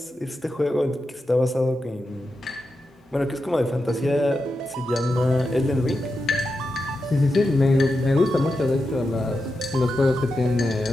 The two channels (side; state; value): both; normal; correlation 0.89